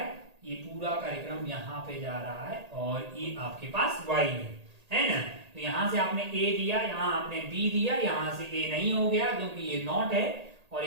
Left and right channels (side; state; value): left; late; 1.8 ms